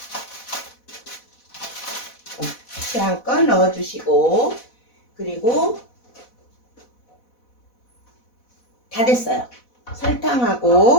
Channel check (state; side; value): late; right; 4.1 ms